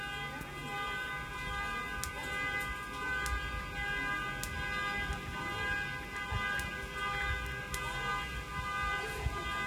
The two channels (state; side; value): identical; both; correlation 1.00